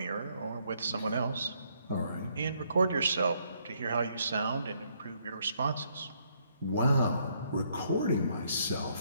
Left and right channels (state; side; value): inverted; both; correlation -0.70